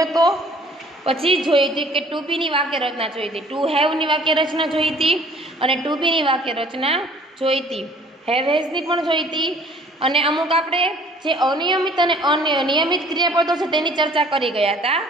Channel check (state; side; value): normal; both; correlation 0.54